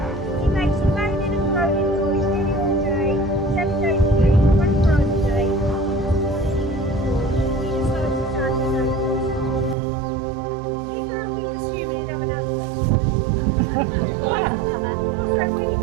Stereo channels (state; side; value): drops out; left; at 9.8 s